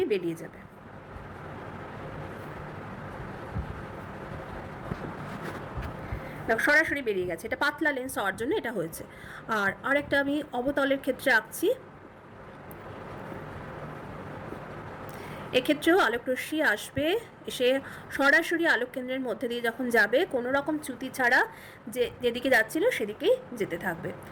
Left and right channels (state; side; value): identical; both; correlation 1.00